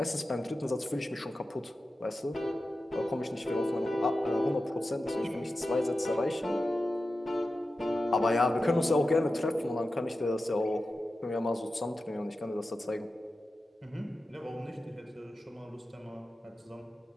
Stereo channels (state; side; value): normal; both; correlation 0.93